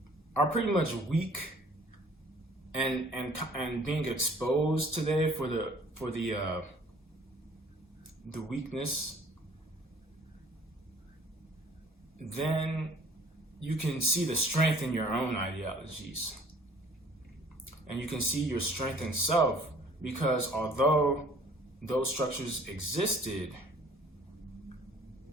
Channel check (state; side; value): normal; both; correlation 0.54